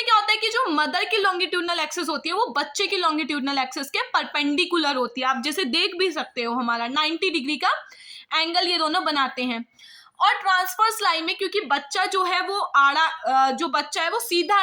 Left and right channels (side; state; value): both; identical; correlation 1.00